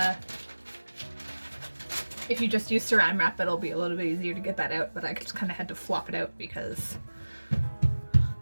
use saran wrap. It'll be a little bit easier to get that out, but I just kind of had to flop it out because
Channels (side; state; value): both; inverted; correlation -1.00